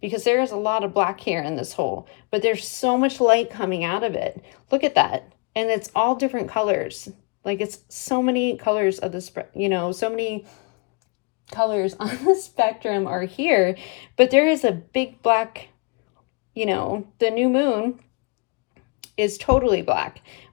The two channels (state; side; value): quieter; right; 33.5 dB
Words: because there's a lot of black hair in this hole, but there's so much light coming out of it. Look at that, and it's all different colors. Like, it's so many colors of the so many colors on the spectrum are here, but there is a big black, the new moon is totally black,